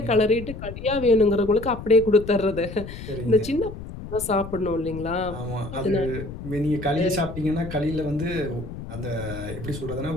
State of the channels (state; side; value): noise; left; rumble, 11 dB below the sound